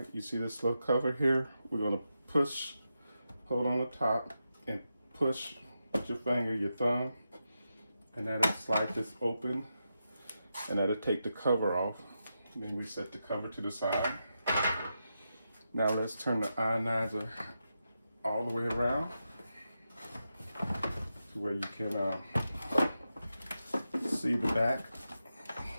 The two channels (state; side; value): inverted; both; correlation -0.88